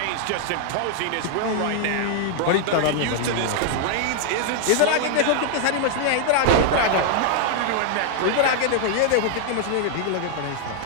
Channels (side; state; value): both; different; correlation 0.00